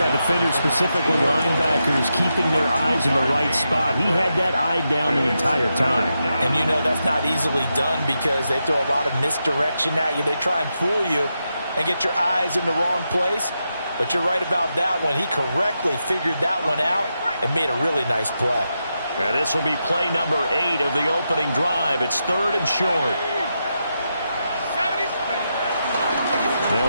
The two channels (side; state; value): both; inverted; correlation -0.86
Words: defenders, specifically linebackers, keeping their eyes in the right spot, he had that eye down the entire time. And you know that's not easily done because they throw a lot of misdirection at you. They try and fool you and get your eyes in the wrong place. But you're right about that one. He correctly figured that one out and made a really nice play. And this will be play number 8 of the opening drive. It's 3rd and short.